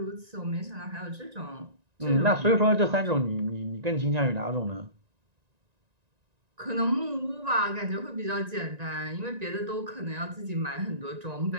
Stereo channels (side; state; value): left; late; 1.9 ms